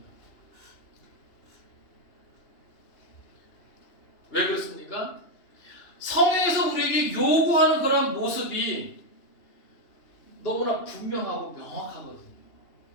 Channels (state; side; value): late; right; 3.0 ms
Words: 왜 그렇습니까? 성경에서 우리에게 요구하는 그런 모습이 너무나 분명하고 명확하거든요.